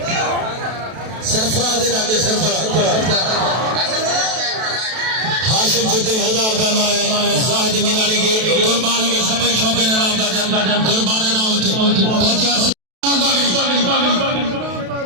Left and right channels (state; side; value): late; left; 32 ms